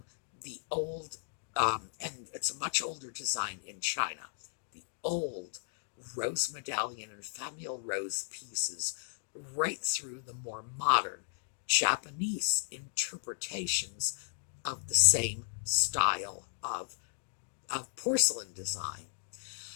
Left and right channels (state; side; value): silent; right; digital silence